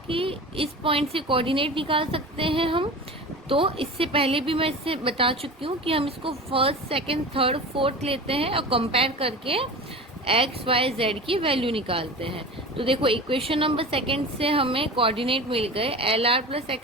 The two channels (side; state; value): both; normal; correlation 0.33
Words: इस पॉइंट से कोऑर्डिनेट निकाल सकते हैं हम, तो इससे पहले भी मैं इससे बता चुकी हूँ कि हम इसको फर्स्ट सेकंड थर्ड फोर्थ लेते हैं और कंपेयर करके एक्स वाई जेड की वैल्यू निकालते हैं। तो देखो इक्वेशन नंबर सेकंड से हमें कोऑर्डिनेट मिल गए एल आर प्लस